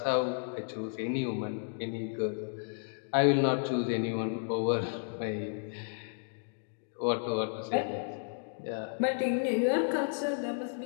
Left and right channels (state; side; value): silent; right; digital silence